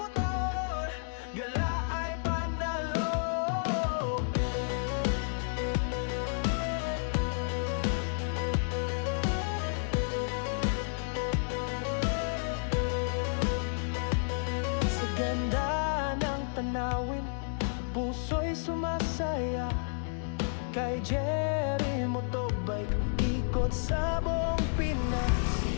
gala ay panalo. Sa ganda ng tanawin, puso'y sumasaya. Kay Jerry Motobike, ikot sa buong Pinas.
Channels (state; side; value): silent; right; digital silence